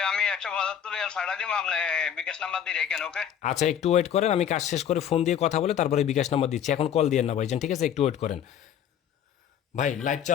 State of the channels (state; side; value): quieter; right; 9.1 dB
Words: আমি 175 রিয়াল ছাড়া দিব, আপনি বিকাশ নাম্বার দিয়ে রেখেন। ওকে আচ্ছা একটু ওয়েট করেন, আমি কাজ শেষ করে ফোন দিয়ে কথা বলে তারপরে বিকাশ নাম্বার দিচ্ছি, এখন কল দিয়েন না ভাইজান, ঠিক আছে। একটু ওয়েট করেন ভাই, লাইভ